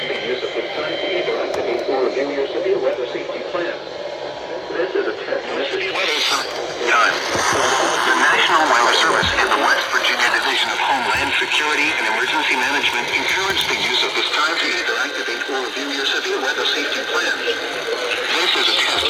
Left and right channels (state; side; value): identical; both; correlation 1.00